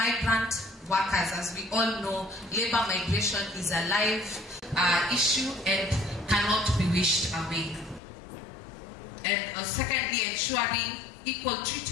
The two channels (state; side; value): drops out; right; at 8.0 s